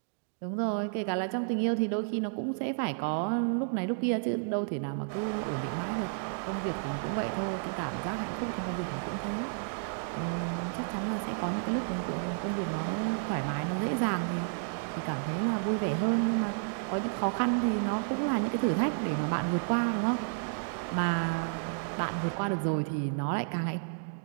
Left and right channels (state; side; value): silent; left; digital silence